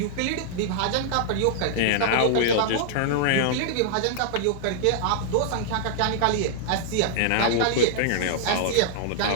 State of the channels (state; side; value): different; both; correlation -0.01